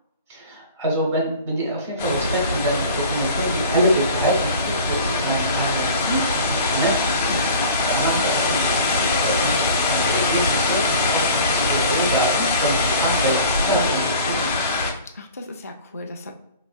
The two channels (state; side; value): inverted; both; correlation -0.42